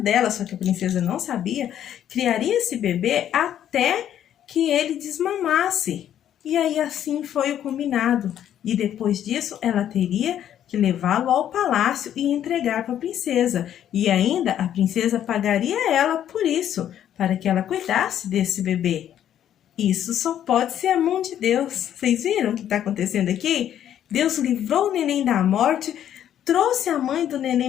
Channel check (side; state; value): right; quieter; 10.5 dB